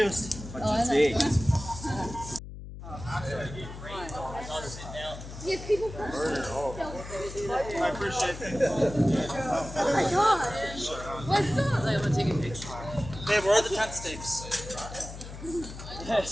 But it's big. Yeah, people... I appreciate it. Oh my gosh. What's up? I'm gonna take a picture. Babe, where are the tent stakes? I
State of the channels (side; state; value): left; noise; hum, 12 dB below the sound